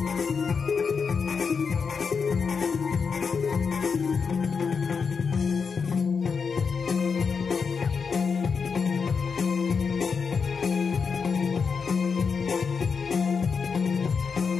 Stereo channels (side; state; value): right; quieter; 5.7 dB